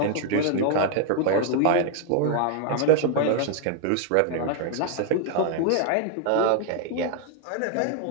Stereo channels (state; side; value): different; both; correlation 0.00